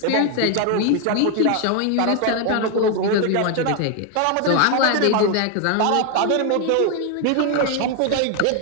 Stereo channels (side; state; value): both; different; correlation 0.01